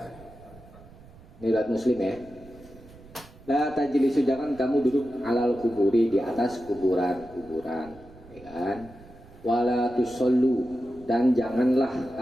Ini riwayat Muslim ya. La tajlisu, jangan kamu duduk alal kuburi, di atas kuburan, ya kan? Wala tusallu, dan janganlah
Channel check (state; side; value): noise; right; rumble, 21 dB below the sound